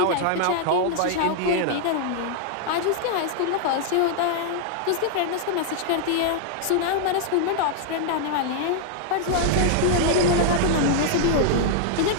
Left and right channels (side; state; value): both; different; correlation -0.01